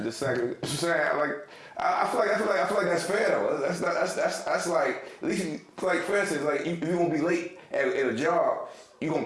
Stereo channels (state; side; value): identical; both; correlation 1.00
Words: the second. Like I feel like that's fair though. That's like at least like for instance, like if you gonna be late at a job, you gonna